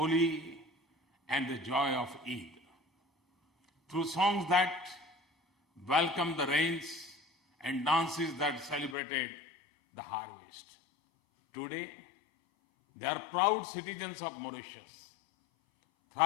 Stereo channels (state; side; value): drops out; right; at 9.0 s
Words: and the joy of Eid. Through songs that welcomed the rains and dances that celebrated the harvest. Today, they are proud citizens of Mauritius,